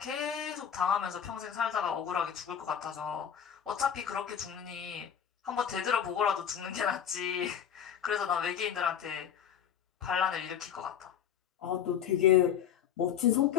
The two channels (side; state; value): right; quieter; 8.7 dB